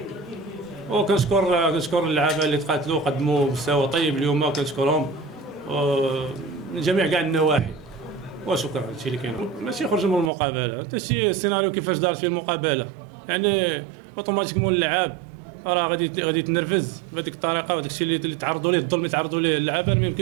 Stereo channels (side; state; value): left; drops out; at 10.3 s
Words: وكنشكر اللعابه اللي تقاتلوا قدموا مستوى طيب اليوم، كنشكرهم من جميع كاع النواحي. وشكرا هادشي اللي كاين، ماشي يخرج من المقابله، حتى شي السيناريو كيفاش دارت فيه المقابله، يعني اوتوماتيكمون اللعاب راه غادي يتنرفز بهذيك الطريقه، وهذاك الشيء اللي تعرضوا ليه الظلم اللي تعرضوا ليه اللعابه ما